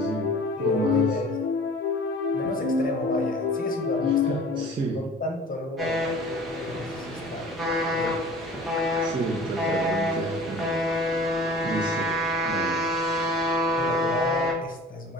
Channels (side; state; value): both; normal; correlation 0.45